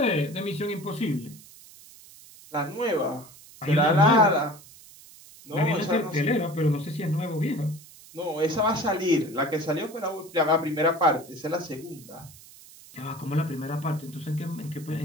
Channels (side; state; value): right; noise; hiss, 21 dB below the sound